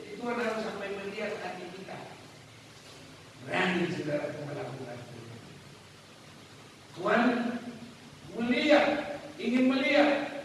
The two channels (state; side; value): identical; both; correlation 1.00